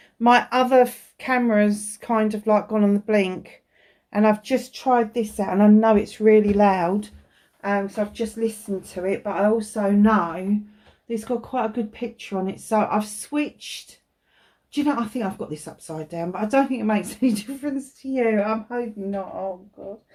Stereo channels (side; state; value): both; identical; correlation 1.00